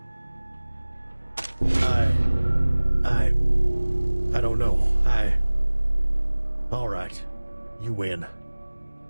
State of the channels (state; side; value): inverted; both; correlation -1.00